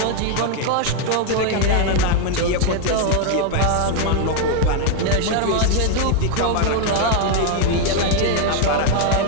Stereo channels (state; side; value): different; both; correlation 0.00